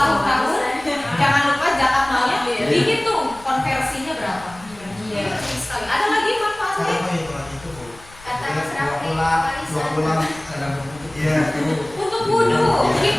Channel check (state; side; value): noise; left; rumble, 22 dB below the sound